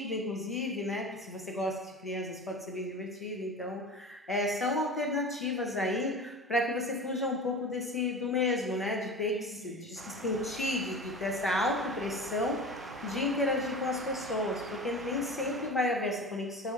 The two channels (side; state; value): both; normal; correlation 0.33